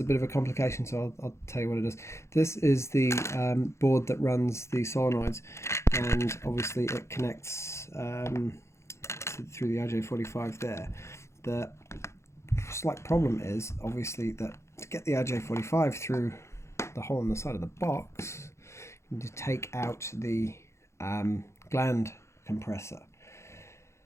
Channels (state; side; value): late; right; 0.13 ms